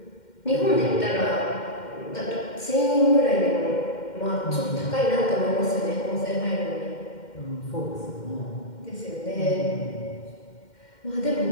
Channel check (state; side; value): late; right; 2.1 ms